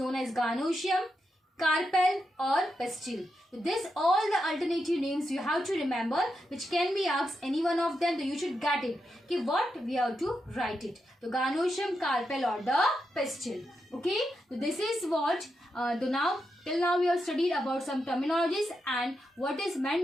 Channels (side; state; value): both; normal; correlation 0.85